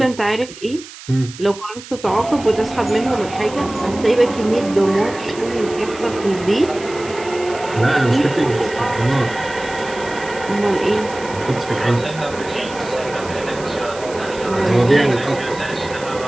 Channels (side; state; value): right; noise; hiss, 16 dB below the sound